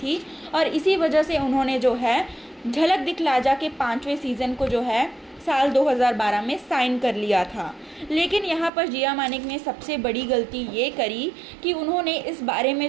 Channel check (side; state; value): left; drops out; at 8.7 s